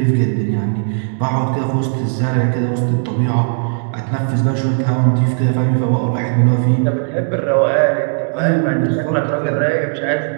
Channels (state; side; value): silent; left; digital silence